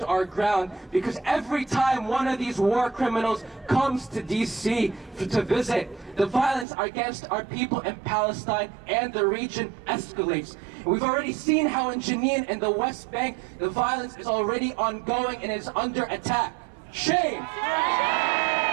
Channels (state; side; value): drops out; left; at 6.7 s